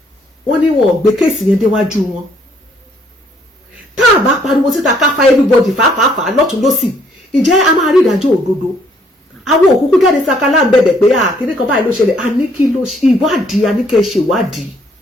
wọ́n ní wọn gbé kéèsì yẹn déwájú wọn tá a bá pariwo síta ká fa everybody fàáfàá lọ́tún lọ́sì ǹjẹ́ a máa rí ìdájọ́ òdodo àwọn òkúkú jáde sakala ń bẹ̀bẹ̀ pé kíní kan báyìí ló ṣẹlẹ̀ a ní kí ló ìwádìí a ní kẹ́ ṣèwádìí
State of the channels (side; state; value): both; normal; correlation 0.66